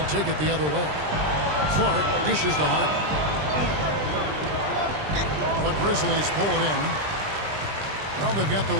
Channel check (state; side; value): late; left; 20 ms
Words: take it the other way. Clark dishes to Harden. The Grizzlies pull it in. Well, they've got the